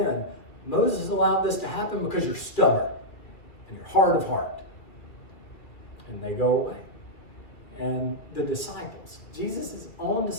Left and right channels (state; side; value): late; right; 2.6 ms